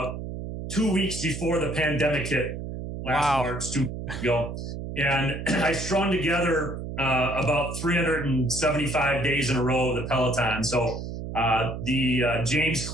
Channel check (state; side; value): noise; right; hum, 7 dB below the sound